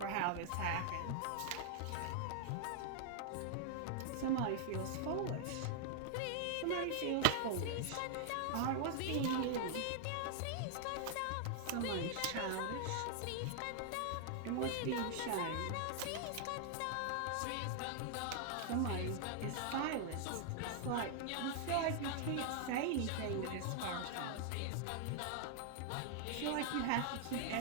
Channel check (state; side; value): different; both; correlation 0.00